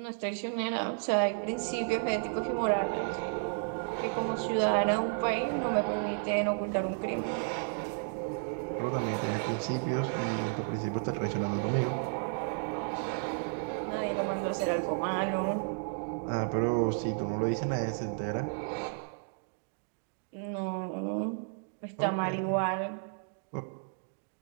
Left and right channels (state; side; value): silent; left; 56 dB below the other